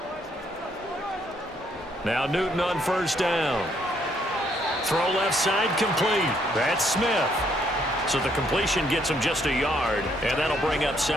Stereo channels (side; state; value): both; normal; correlation 0.70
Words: Now Newton on 1st down. Throw left side complete. That's Smith. So the completion gets him just a yard, and that'll bring up